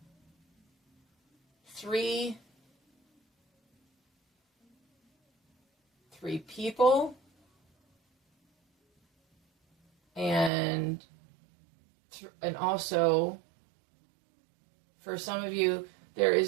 three people, and also for some of you, there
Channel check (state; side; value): drops out; left; at 10.5 s